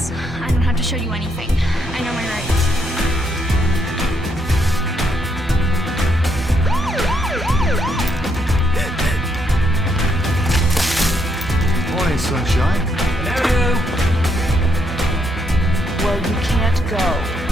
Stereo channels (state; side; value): normal; both; correlation 0.75